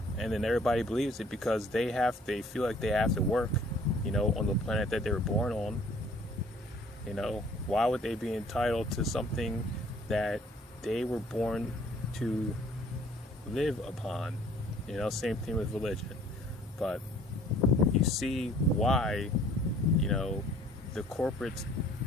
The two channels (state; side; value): normal; both; correlation 0.56